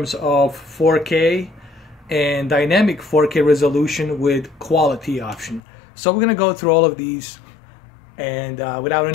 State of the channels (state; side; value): drops out; right; at 5.6 s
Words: of 4K and dynamic 4K resolution with quality option. So we're going to go through all of these. And without